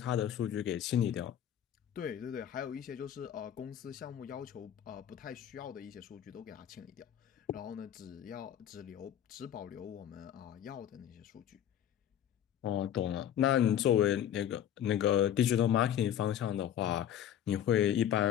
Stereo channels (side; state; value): right; quieter; 10.3 dB